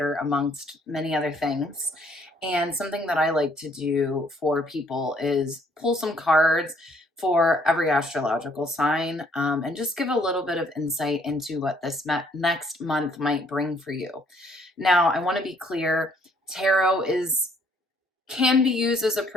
amongst many other things. And something that I like to do for people is pull some cards for every astrological sign and just give a little bit of insight into what this next month might bring for you. Now, I want to be clear, tarot can be used as a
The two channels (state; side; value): normal; both; correlation 0.64